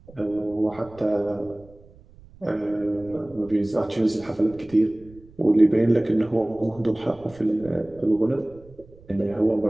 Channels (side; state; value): right; noise; rumble, 24 dB below the sound